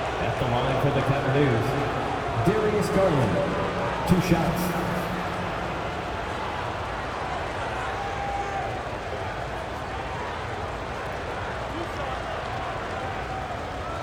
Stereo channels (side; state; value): both; identical; correlation 1.00